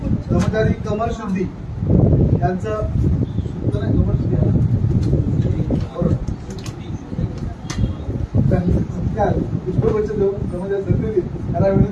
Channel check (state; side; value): identical; both; correlation 1.00